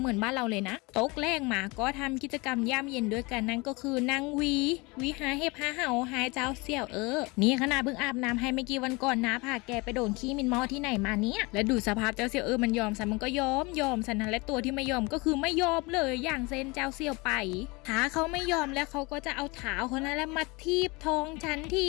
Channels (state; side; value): quieter; right; 25.8 dB